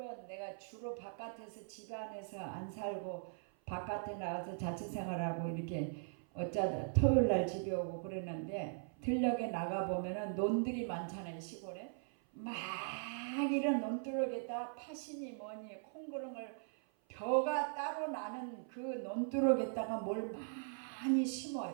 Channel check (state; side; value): silent; left; 51 dB below the other